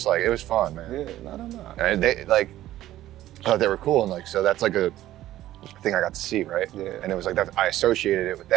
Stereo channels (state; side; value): quieter; left; 14.1 dB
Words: like it was fun, man. No. And they like, I thought they were cool, and like so that's like a thing I got to see, right? And it was like that. I associated it with